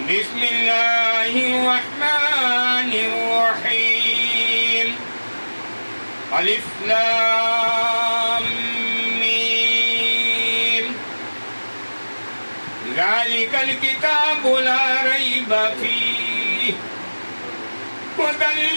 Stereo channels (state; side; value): inverted; both; correlation -1.00